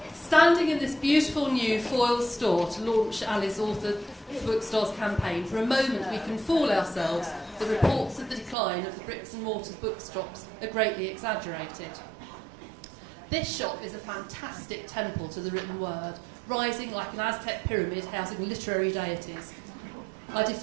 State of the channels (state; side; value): drops out; left; at 8.6 s